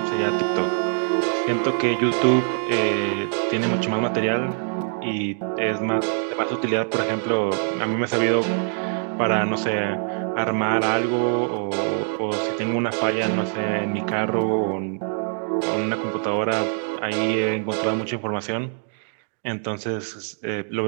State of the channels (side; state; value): left; silent; 58 dB below the other